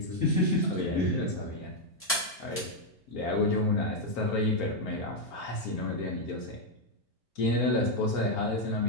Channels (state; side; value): normal; both; correlation 0.00